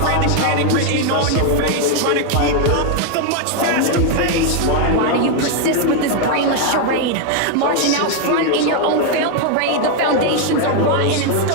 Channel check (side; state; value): both; different; correlation 0.01